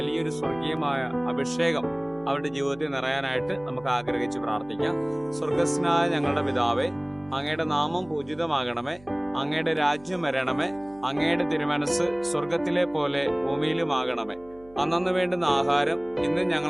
സ്വർഗീയമായ അഭിഷേകം അവരുടെ ജീവിതത്തിൽ നിറയാനായിട്ട് നമുക്ക് ആഗ്രഹിച്ച് പ്രാർത്ഥിക്കാം. സ്വർഗസ്നായ ഞങ്ങളുടെ പിതാവേ, അങ്ങയുടെ നാമം പൂജിതമാകണമേ, അങ്ങയുടെ രാജ്യം വരണമേ, അങ്ങയുടെ തിരുമനസ് സ്വർഗത്തിലെ പോലെ ഭൂമിയിലുമാകണമേ. അന്നു വേണ്ടുന്ന ആഹാരം ഇന്ന്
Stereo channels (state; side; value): noise; right; hum, 25 dB below the sound